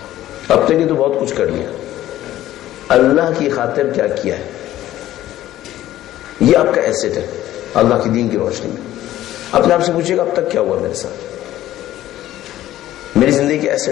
اب تک یہ تو بہت کچھ کر لیا، اللہ کی خاطر کیا کیا ہے؟ یہ آپ کا ایسٹ ہے اللہ کی دین کی روشنی میں. اپنے آپ سے پوچھیے گا اب تک کیا ہوا میرے ساتھ، میری زندگی کے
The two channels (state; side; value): quieter; right; 13.9 dB